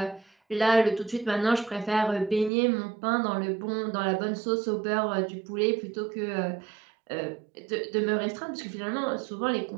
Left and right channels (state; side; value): drops out; left; at 2.5 s